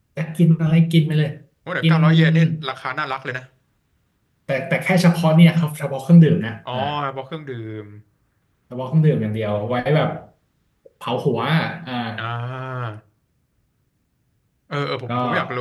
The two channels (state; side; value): identical; both; correlation 1.00